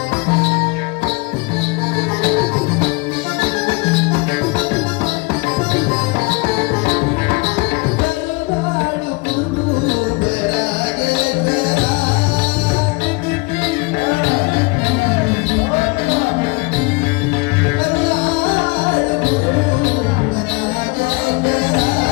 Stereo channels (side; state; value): right; quieter; 27.5 dB